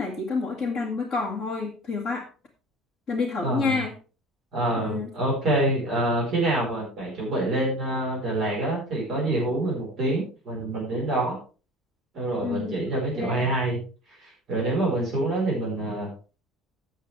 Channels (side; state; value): both; normal; correlation 0.39